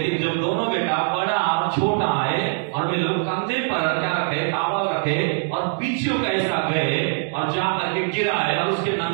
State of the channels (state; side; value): silent; left; digital silence